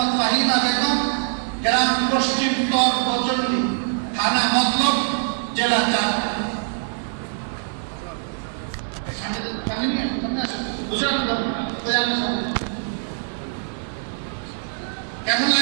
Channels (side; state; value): left; silent; digital silence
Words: ফাহিমা বেগম, গ্রাম পশ্চিম তর বজল্লি, থানা মতলব, জেলা চাঁদপুর। কেমন